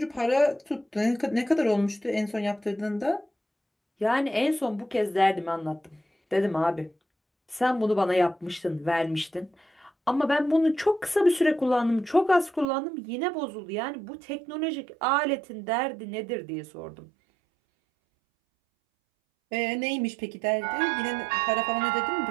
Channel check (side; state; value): left; drops out; at 12.7 s